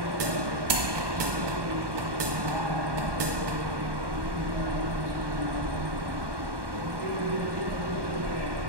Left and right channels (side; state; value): left; late; 1.2 ms